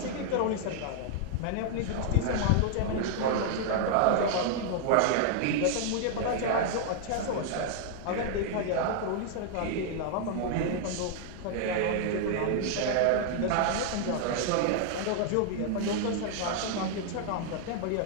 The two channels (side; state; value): both; different; correlation 0.00